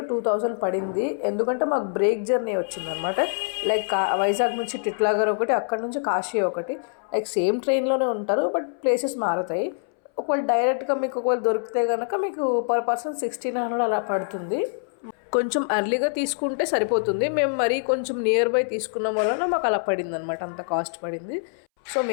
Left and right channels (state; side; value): silent; right; 62 dB below the other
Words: 2000 పడింది. ఎందుకంటే మాకు బ్రేక్ జర్నీ వచ్చిందనమాట. లైక్ వైజాగ్ నుంచి టిట్లాగర్ ఒకటి, అక్కడ నుంచి కాశీ ఒకటి. లైక్ సేమ్ ట్రైన్లోనే ఉంటారు, బట్ ప్లేసెస్ మారుతాయి. ఒకవేళ డైరెక్ట్గా మీకు ఒకవేళ దొరికితే కనుక మీకు పర్ పర్సన్ 1600 అలా పడుతుంది. కొంచెం ఎర్లీగా తీసుకుంటే సరిపోతుంది. మేము మరీ కొంచెం నియర్ బై తీసుకున్నాం వలన మాకు అలా పడింది అనమాట, అంత కాస్ట్ పడింది. సో